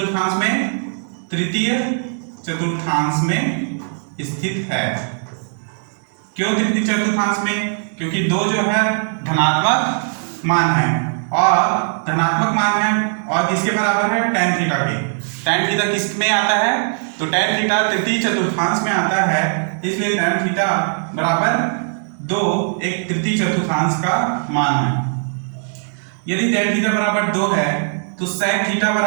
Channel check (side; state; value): left; silent; 66 dB below the other